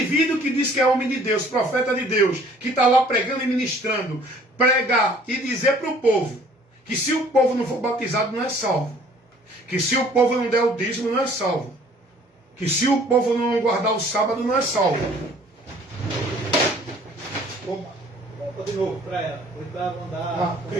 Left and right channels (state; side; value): normal; both; correlation 0.55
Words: que diz que é homem de Deus, profeta de Deus, que está lá pregando e ministrando, pregar e dizer para o povo que se o povo não for batizado não é salvo, que se o povo não der o dízimo não é salvo, que se o povo não guardar o sábado não é salvo. Opa, volta de novo para ela. Oitava andar.